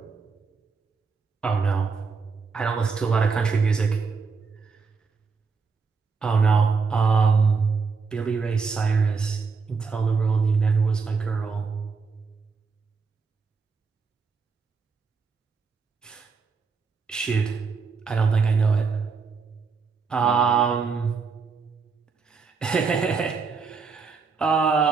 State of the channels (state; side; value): quieter; left; 5.0 dB